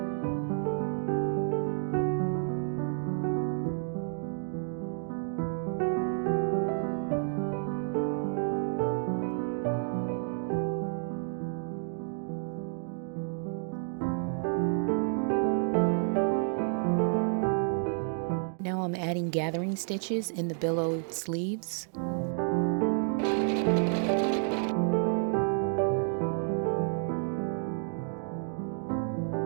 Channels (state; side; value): silent; left; 58 dB below the other